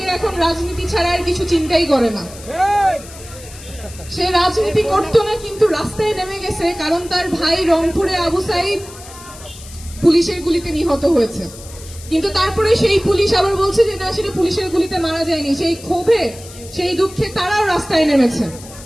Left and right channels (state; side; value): noise; left; hiss, 17 dB below the sound